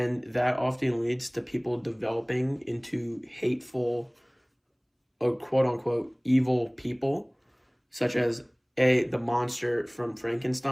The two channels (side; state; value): both; identical; correlation 1.00